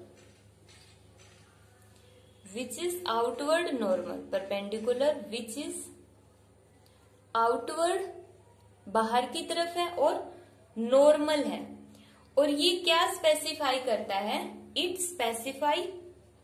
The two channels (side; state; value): both; identical; correlation 1.00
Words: which is outward normal। perpendicular which is outward बाहर की तरफ है और नॉर्मल है। और ये क्या स्पेसिफाई करता है? It